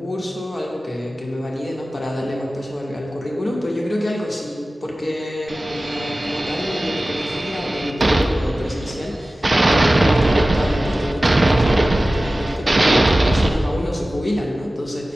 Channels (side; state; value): both; normal; correlation 0.96